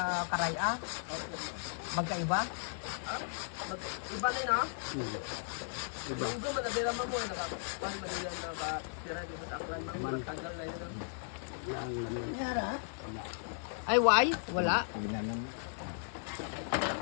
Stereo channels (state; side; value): silent; right; digital silence